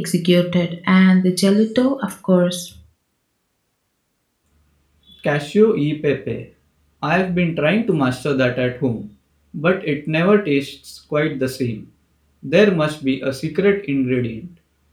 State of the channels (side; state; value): both; identical; correlation 1.00